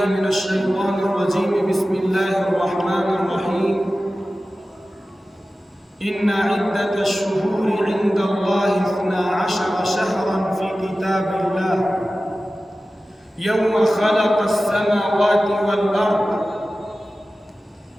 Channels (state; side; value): normal; both; correlation 0.95